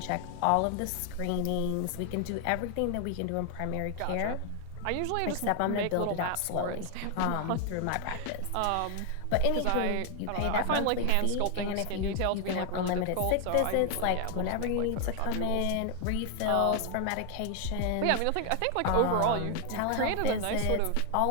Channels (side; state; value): both; different; correlation 0.00